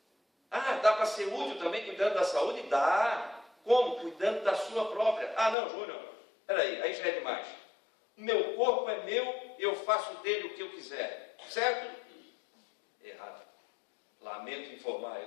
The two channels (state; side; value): drops out; right; at 5.6 s